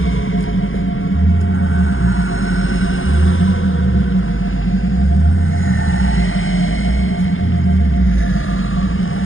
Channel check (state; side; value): late; right; 0.58 ms